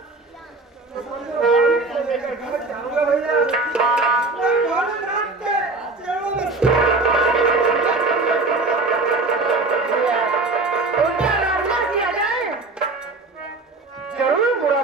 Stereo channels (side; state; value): left; quieter; 3.5 dB